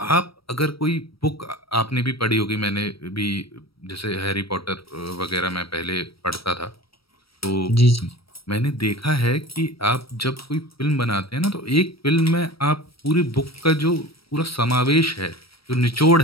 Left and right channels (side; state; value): right; late; 0.75 ms